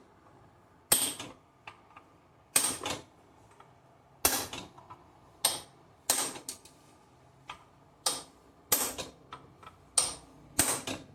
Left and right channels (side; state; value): both; identical; correlation 1.00